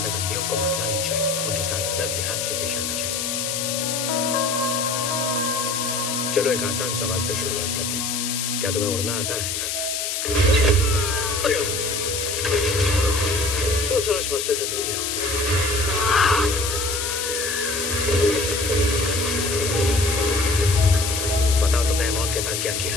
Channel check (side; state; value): left; noise; hiss, 2 dB below the sound